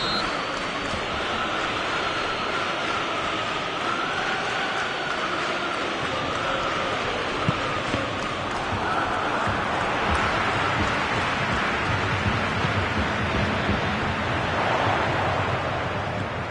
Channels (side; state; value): both; identical; correlation 1.00